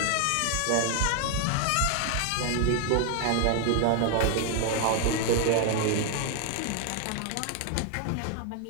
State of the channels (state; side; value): different; both; correlation 0.00